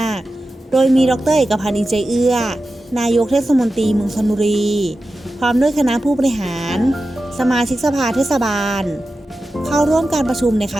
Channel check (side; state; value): both; normal; correlation 0.93